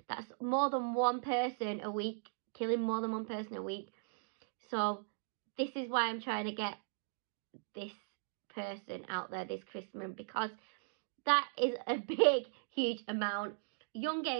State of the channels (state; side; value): silent; left; digital silence